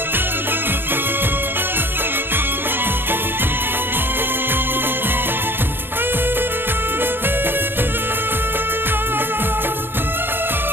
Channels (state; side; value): late; left; 0.10 ms